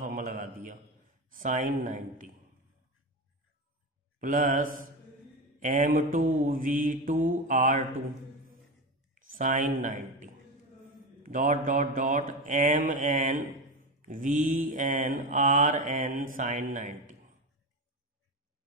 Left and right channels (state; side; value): normal; both; correlation 0.19